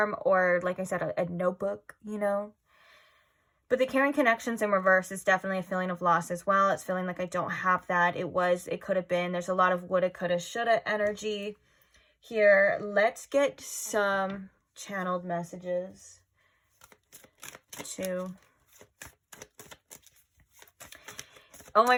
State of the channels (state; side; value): identical; both; correlation 1.00